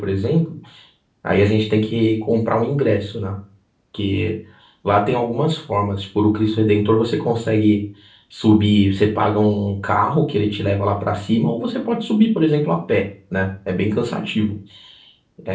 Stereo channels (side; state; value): both; identical; correlation 1.00